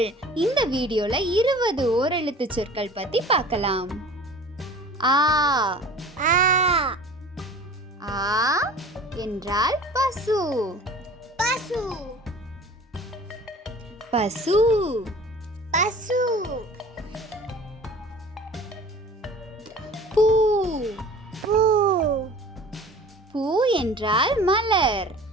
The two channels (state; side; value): normal; both; correlation 0.43